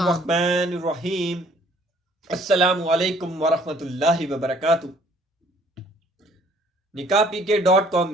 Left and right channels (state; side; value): normal; both; correlation 0.59